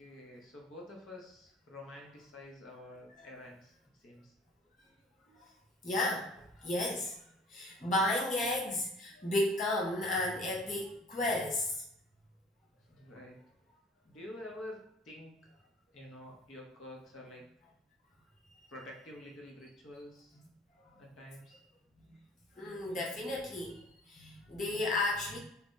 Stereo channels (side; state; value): both; normal; correlation 0.49